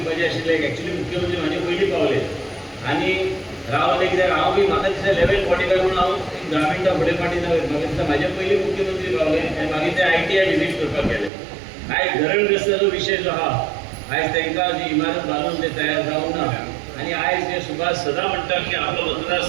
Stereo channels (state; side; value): drops out; left; at 11.3 s